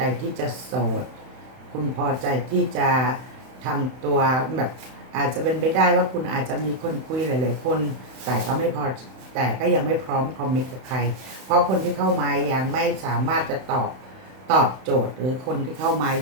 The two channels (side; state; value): left; late; 31 ms